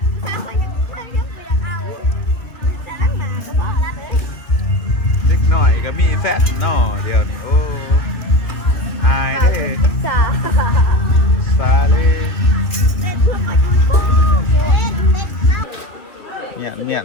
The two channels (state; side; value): late; right; 2.4 ms